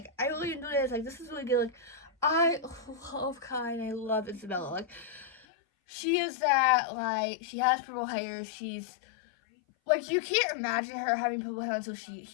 I really enjoy this. Like, this is really good. Like, I love Kai, and I love Isabella. Like, she is that, like, she has purple hair. She's, like, you can't imagine her having purple hair until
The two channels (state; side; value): drops out; right; at 5.5 s